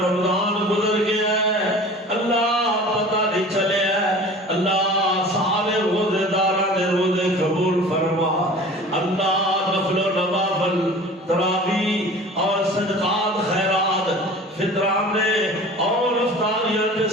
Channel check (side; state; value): both; normal; correlation 0.41